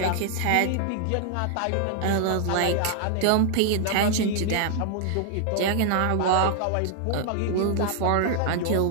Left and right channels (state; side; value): different; both; correlation 0.00